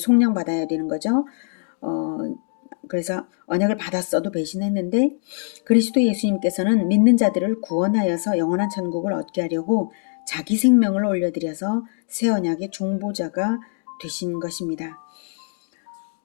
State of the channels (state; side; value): silent; right; 56 dB below the other